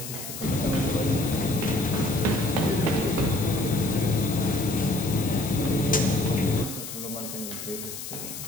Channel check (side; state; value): left; noise; hiss, 9 dB below the sound